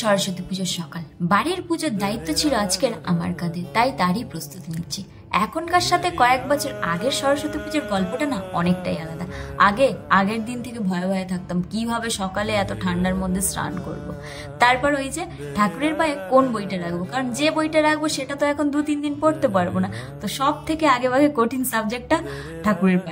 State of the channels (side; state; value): both; identical; correlation 1.00